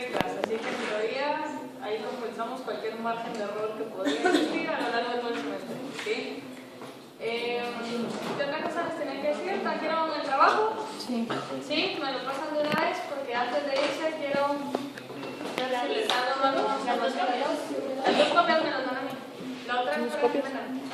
así que en teoría ahí compensamos cualquier margen de error que podría existir a lo largo de todo el semestre, ¿sí? ¿Qué otra cosa les tenía que decir? ¿Trajeron el trabajo? Sí. ¿Sí? ¿Me lo pasan de una vez? Porque antes de irse quiero... Si les dan las dos copias me las dan a mí. La otra es para que me dan.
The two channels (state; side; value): identical; both; correlation 1.00